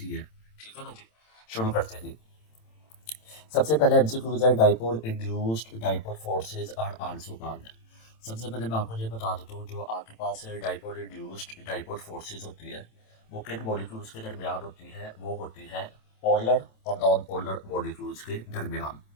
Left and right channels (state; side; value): late; right; 27 ms